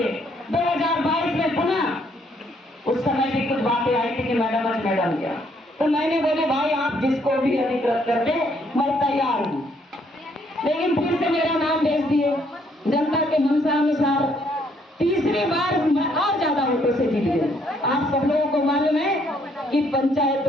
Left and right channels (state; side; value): normal; both; correlation 0.69